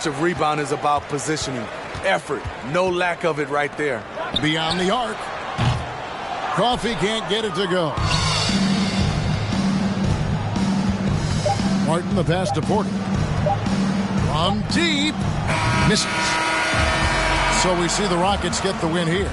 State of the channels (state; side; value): identical; both; correlation 1.00